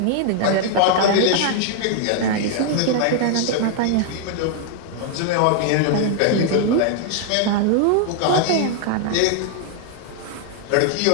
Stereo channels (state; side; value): different; both; correlation 0.00